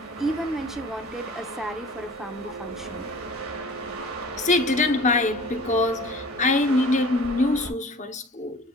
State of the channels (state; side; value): normal; both; correlation 0.44